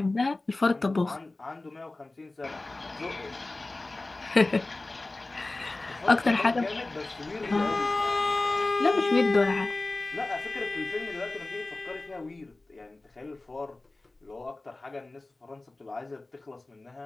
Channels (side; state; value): right; quieter; 3.0 dB